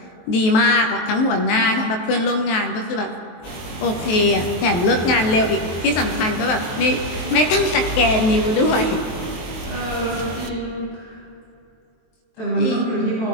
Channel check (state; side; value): late; right; 23 ms